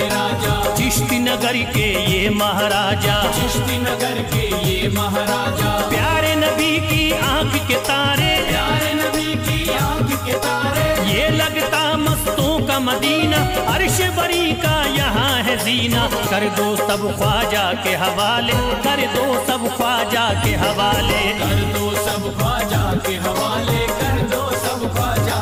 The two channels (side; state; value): both; identical; correlation 1.00